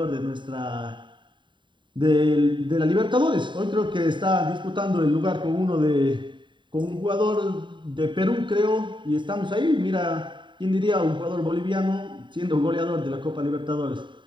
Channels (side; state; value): left; late; 0.23 ms